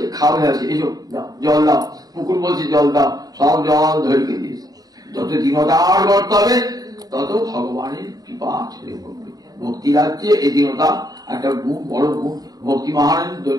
খাওয়া আছে, এসো দাও জল দাও। পুকুর বলছে জল দাও, সব জল ধরিয়ে দিয়েছে। যত দীনতার করতে হবে তত ভগবানের কৃপা ছড়ে পড়বে। ভক্তি রাজ্যে এই দীনতা একটা গুণ, বড় গুণ। ভক্তি মহারানী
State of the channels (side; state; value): left; late; 0.18 ms